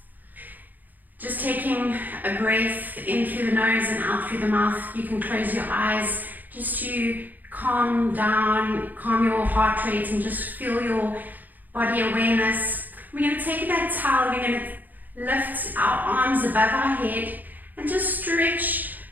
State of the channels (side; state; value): left; late; 0.084 ms